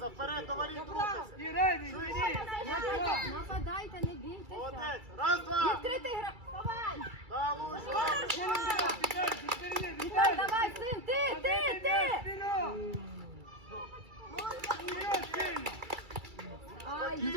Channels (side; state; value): left; late; 2.3 ms